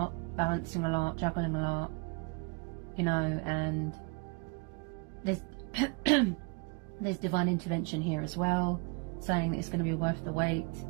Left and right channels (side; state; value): left; quieter; 30.8 dB